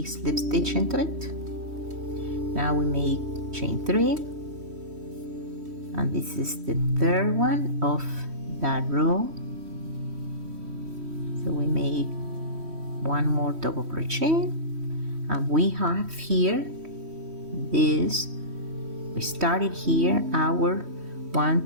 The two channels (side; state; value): left; late; 3.1 ms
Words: slip stitch into it. Now we make chain 3, and this is the third one of that row. So we make 1 more double crochet, and we have here this. We started here our